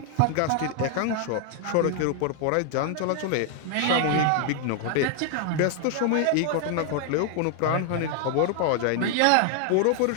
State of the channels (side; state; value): both; different; correlation 0.00